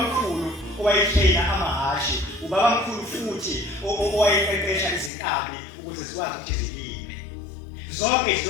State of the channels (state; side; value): drops out; right; at 5.1 s